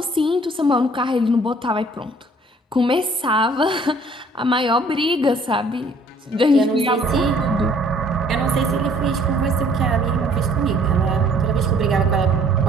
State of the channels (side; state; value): both; normal; correlation 0.58